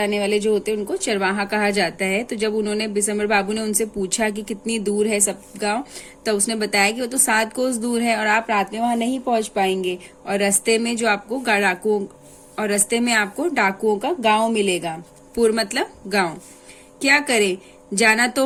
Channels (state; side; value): identical; both; correlation 1.00